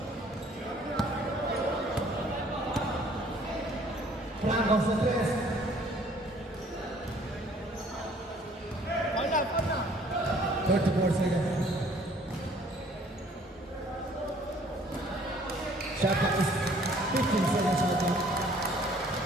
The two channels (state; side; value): normal; both; correlation 0.58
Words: Franco sa 3.